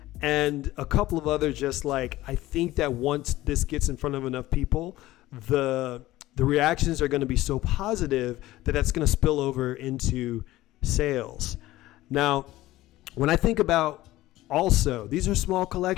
and a couple of other I think that once this gets in front of enough people, the reactions are going to be so positive that that's going to spill over into sales. Now, when I think about Also, these are small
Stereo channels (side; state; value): right; quieter; 16.6 dB